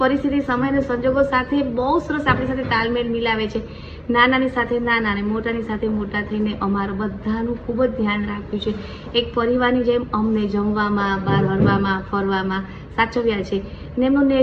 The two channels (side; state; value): both; identical; correlation 1.00